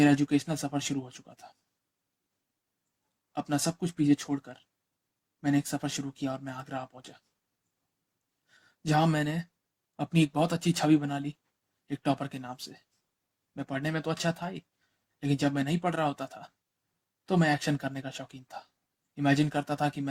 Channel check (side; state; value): both; identical; correlation 1.00